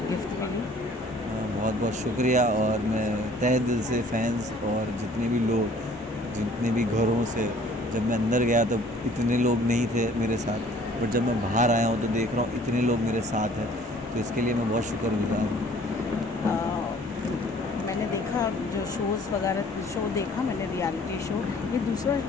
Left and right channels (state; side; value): normal; both; correlation 0.55